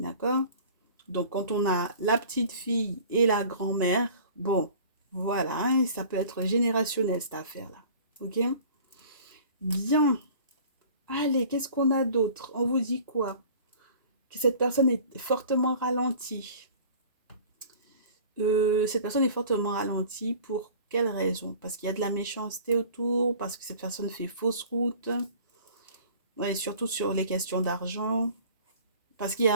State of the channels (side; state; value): both; inverted; correlation -0.46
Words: Donc, quand on a la petite fille et la grand-mère, bon, voilà, hein, ça peut être générationnel cette affaire-là. Ok? Bien. Allez, qu'est-ce qu'on a d'autre? On vous dit quoi? Que cette personne est fortement ralentie. Cette personne est fortement ralentie pour quelle raison? Parce qu'il y a de la méchanceté autour, parce que cette personne fait fausse route, ouais, et surtout sur les questions d'argent, parce qu'il y